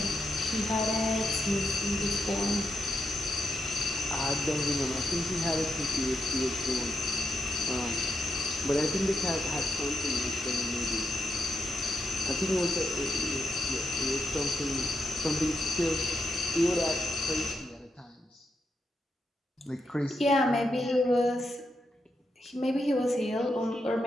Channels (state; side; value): normal; both; correlation 0.83